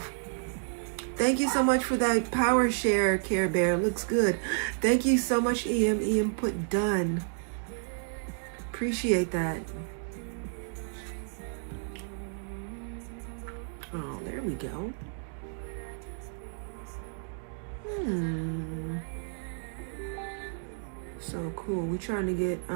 Thank you so much for that power share, Care Bear. Looks good. Thank you so much, EM. EM put done. Appreciate that. Oh, there we go. So cool. We're trying to get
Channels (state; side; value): silent; left; digital silence